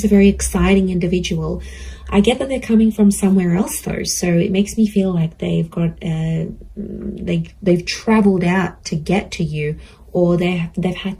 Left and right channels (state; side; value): identical; both; correlation 1.00